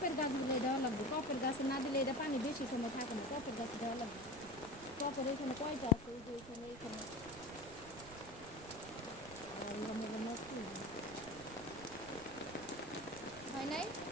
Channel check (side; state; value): right; noise; rumble, 16 dB below the sound